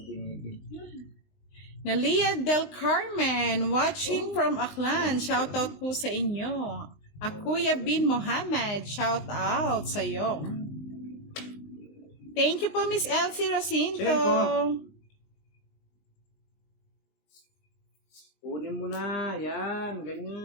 binibigyan. Nalia Del Carmen, watching from Aklan. Shoutout po sa inyo. Kuya Bin Mohammed, shoutout sa iyo. Thank you po, Miss Elsie Rosinto. Kunin mo na. Yan.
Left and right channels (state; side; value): late; right; 20 ms